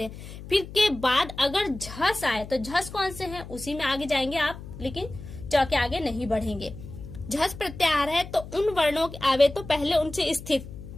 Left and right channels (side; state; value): left; noise; hum, 13 dB below the sound